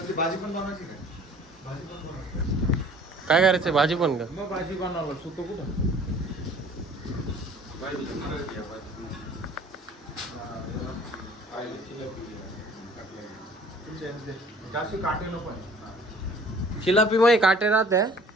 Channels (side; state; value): both; normal; correlation 0.50